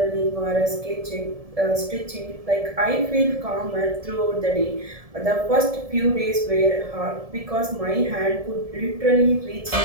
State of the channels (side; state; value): left; late; 1.7 ms